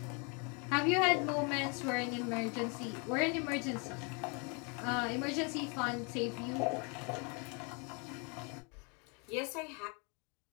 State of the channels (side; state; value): right; quieter; 34.1 dB